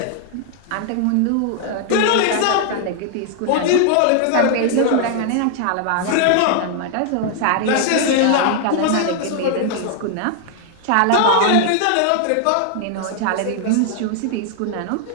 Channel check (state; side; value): different; both; correlation 0.00